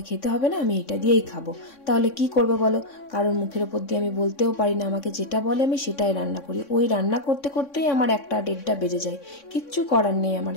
খেতে হবে না, আমি এটা দিয়েই খাবো। তাহলে কি করবো বলো, কারোর মুখের ওপর দিয়ে আমি বলতেও পারি না, আমাকে যেটা বলে আমি সেটাই রান্না করি। ওই রান্না করতে করতেই আমার 1টা-1.5টা বেজে যায়, কিচ্ছু করার নেই আমার,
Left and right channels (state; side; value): late; right; 3.6 ms